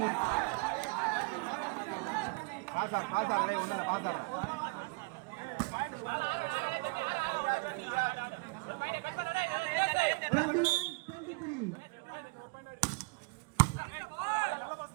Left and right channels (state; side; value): quieter; left; 28.5 dB